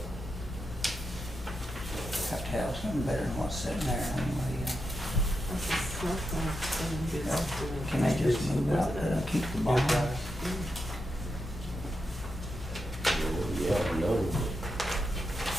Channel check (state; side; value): normal; both; correlation 0.86